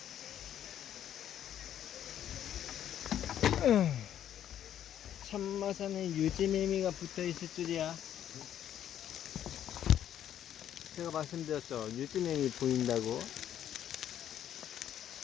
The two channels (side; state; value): right; quieter; 10.5 dB